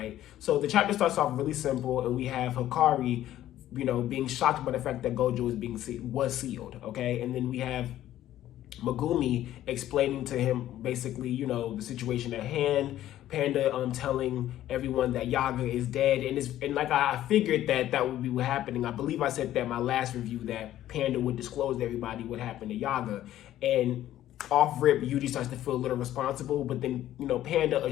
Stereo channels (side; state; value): right; quieter; 13.0 dB